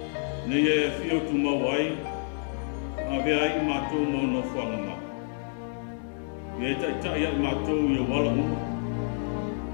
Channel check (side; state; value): right; silent; digital silence